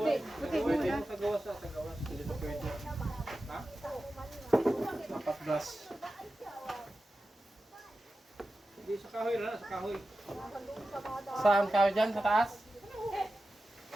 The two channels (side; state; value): both; normal; correlation 0.93